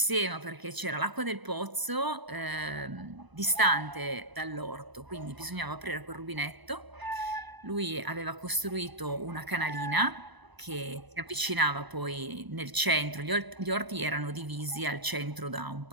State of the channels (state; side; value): late; left; 1.0 ms